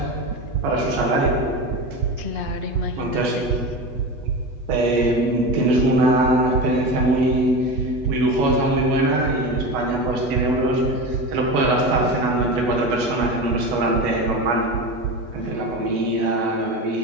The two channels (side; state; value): left; late; 8.2 ms